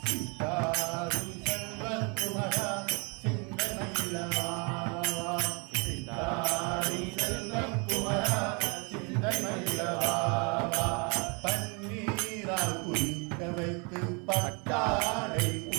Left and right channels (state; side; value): quieter; left; 32.7 dB